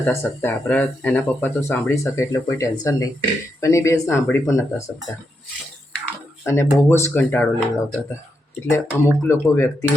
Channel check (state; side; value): normal; both; correlation 0.83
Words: શકતા. આપણા એના પપ્પા તો સાંભળી શકે એટલે કોઈ ટેન્શન નહીં, પણ એ બેન સાંભળી પણ નહોતા શકતા અને બહુ જ કંટાળો લેવડાવતા હતા. એટલે અમુક લોકો